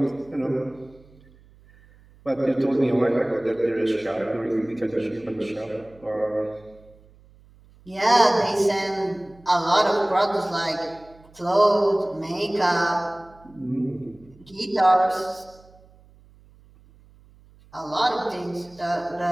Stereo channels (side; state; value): right; noise; hum, 27 dB below the sound